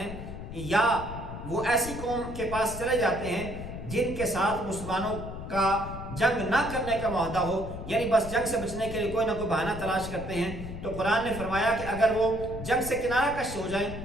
یا وہ ایسی قوم کے پاس چلے جاتے ہیں جن کے ساتھ مسلمانوں کا جنگ نہ کرنے کا معاہدہ ہو، یعنی بس جنگ سے بچنے کے لیے کوئی نہ کوئی بہانہ تلاش کرتے ہیں۔ تو قرآن نے فرمایا کہ اگر وہ جنگ سے کنارہ کش ہو جائیں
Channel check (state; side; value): noise; left; rumble, 9 dB below the sound